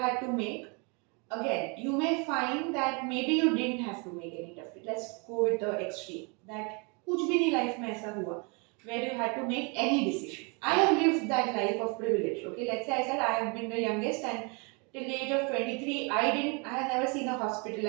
to make? Again, you may find that maybe you didn't have to make any tough. Let's go with the extreme. That कुछ भी नहीं life में ऐसा हुआ where you had to make any decision. I have lived that life of privilege. Okay, let's say I said I have been the youngest and till the age of 23, I have never seen a hospital.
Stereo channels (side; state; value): left; quieter; 32.6 dB